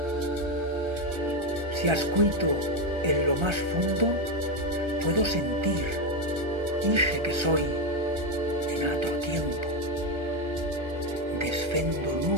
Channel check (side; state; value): left; late; 1.3 ms